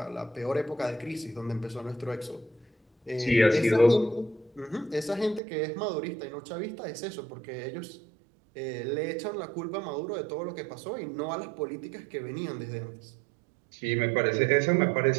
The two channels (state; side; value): drops out; left; at 5.4 s